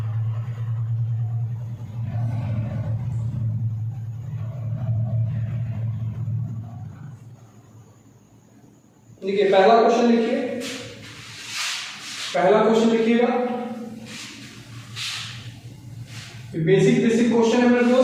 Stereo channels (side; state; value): both; identical; correlation 1.00